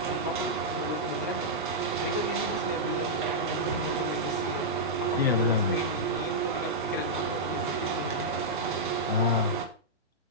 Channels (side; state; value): both; normal; correlation -0.09